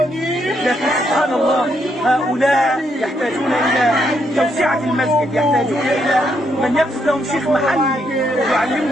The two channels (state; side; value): normal; both; correlation 0.76